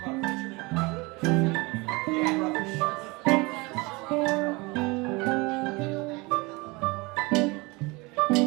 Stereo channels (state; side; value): quieter; left; 25.5 dB